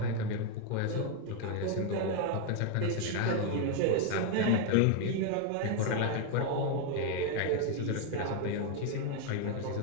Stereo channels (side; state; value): both; different; correlation 0.01